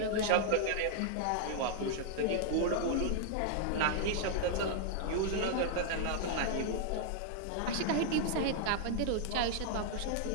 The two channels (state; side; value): different; both; correlation 0.00